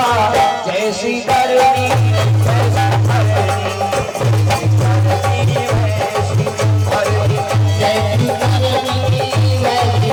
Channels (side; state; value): both; identical; correlation 1.00